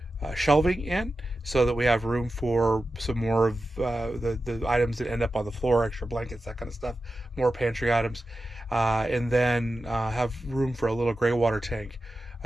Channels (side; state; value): both; normal; correlation 0.92